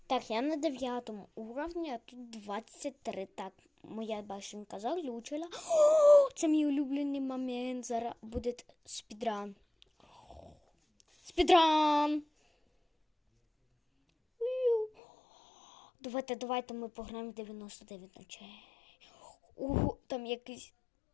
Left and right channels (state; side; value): drops out; right; at 14.9 s